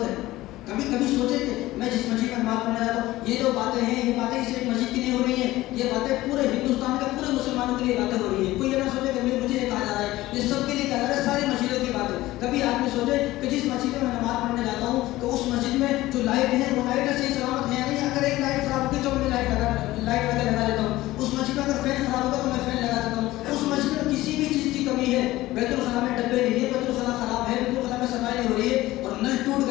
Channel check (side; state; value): right; quieter; 17.2 dB